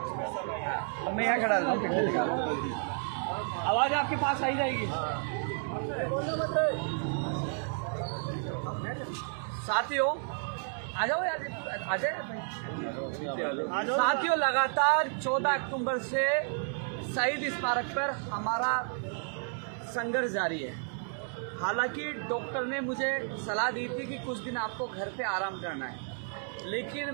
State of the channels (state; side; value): silent; left; 57 dB below the other